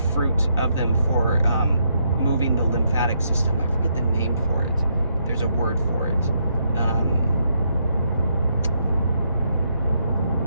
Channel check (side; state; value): both; inverted; correlation -0.76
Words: of them for moving the lymphatic system. I forget the name for it. There's a word for it. I'll